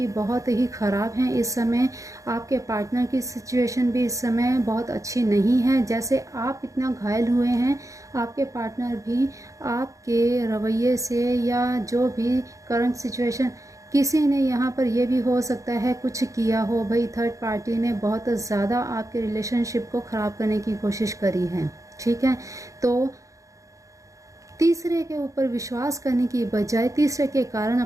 बहुत ही ख़राब हैं इस समय। आपके पार्टनर की सिचुएशन भी इस समय बहुत अच्छी नहीं है। जैसे आप इतना घायल हुए हैं, आपके पार्टनर भी आपके रवैये से या जो भी करंट सिचुएशन, किसी ने यहाँ पर यह भी हो सकता है कुछ किया हो भाई, थर्ड पार्टी ने बहुत ज़्यादा आपके रिलेशनशिप को ख़राब करने की कोशिश करी है, ठीक है। तो तीसरे के ऊपर विश्वास करने की बजाय तीसरे के कारण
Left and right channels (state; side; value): late; left; 0.16 ms